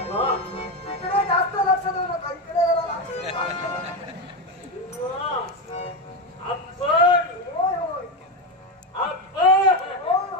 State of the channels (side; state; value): both; normal; correlation 0.12